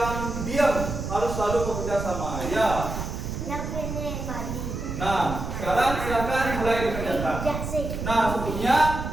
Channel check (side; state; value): right; noise; rumble, 5 dB below the sound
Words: diam, harus selalu bekerja sama ya. Yang ini tadi. Nah, sekarang silakan mulai dikerjakan. Nah, sebelumnya